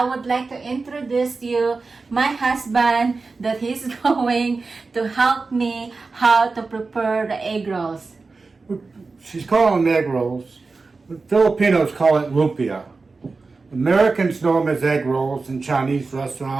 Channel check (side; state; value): left; quieter; 4.0 dB